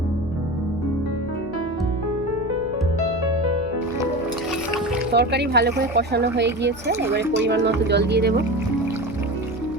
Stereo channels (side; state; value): left; noise; hum, 17 dB below the sound